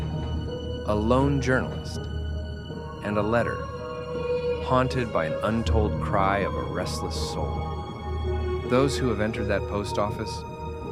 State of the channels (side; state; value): both; identical; correlation 1.00